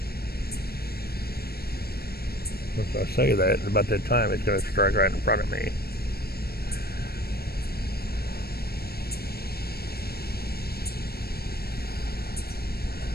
If I say that, about that time, it's going to strike right in front of me.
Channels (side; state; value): right; late; 0.46 ms